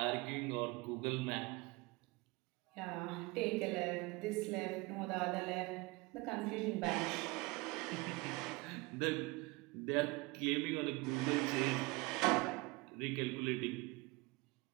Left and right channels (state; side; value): quieter; left; 24.0 dB